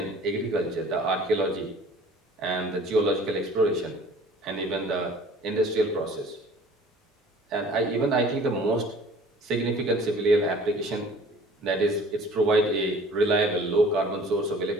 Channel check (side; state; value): both; normal; correlation 0.49